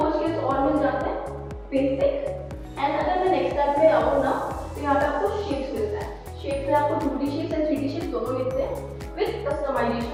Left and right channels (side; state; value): both; identical; correlation 1.00